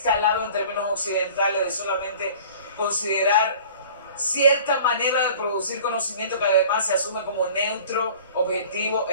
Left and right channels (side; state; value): both; inverted; correlation -0.46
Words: en términos occidentales de solamente considerar cierta manera de producir conocimiento que además se asume como neutro, objetivo,